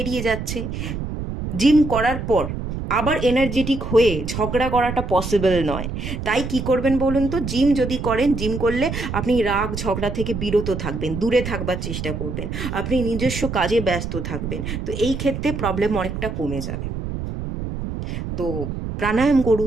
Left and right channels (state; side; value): noise; right; rumble, 5 dB below the sound